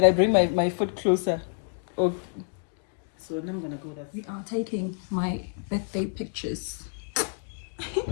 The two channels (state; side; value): silent; right; 58 dB below the other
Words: I bring my foot closer? Oh. So now I'm gonna go that. We are taking my birthday pictures.